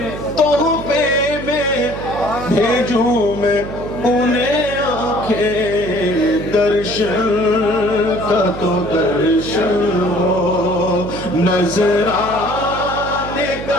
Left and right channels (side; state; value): right; noise; hum, 10 dB below the sound